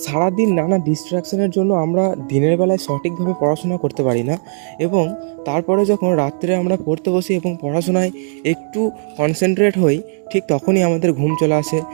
সারাদিন নানা ডিস্ট্রাকশনের জন্য আমরা দিনের বেলায় সঠিকভাবে পড়াশোনা করতে পারি না, এবং তারপরে যখন রাত্রে আমরা পড়তে বসি এবং পড়াশোনায় একটু কনসেন্ট্রেট হই, ঠিক তখনই আমাদের ঘুম চলে আসে।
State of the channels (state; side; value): silent; left; 68 dB below the other